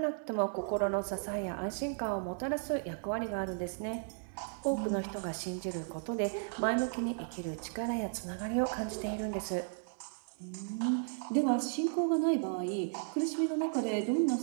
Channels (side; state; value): left; silent; digital silence